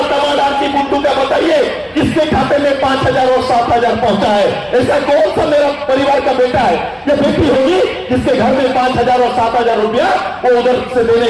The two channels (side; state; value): both; identical; correlation 1.00